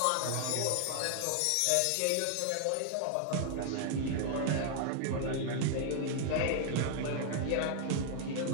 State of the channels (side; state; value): both; different; correlation 0.00